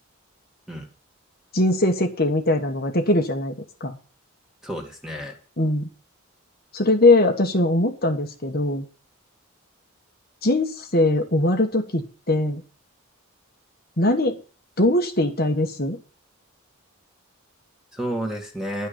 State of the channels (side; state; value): both; normal; correlation 0.39